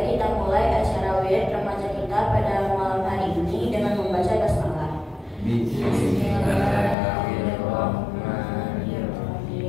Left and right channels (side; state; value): right; drops out; at 7.0 s